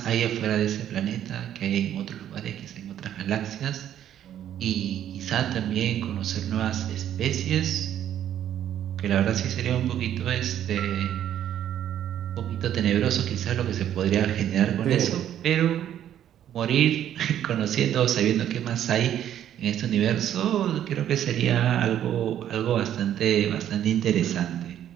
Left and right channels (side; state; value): left; quieter; 10.7 dB